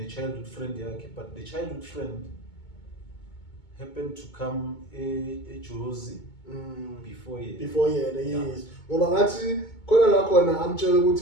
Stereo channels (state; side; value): late; right; 2.2 ms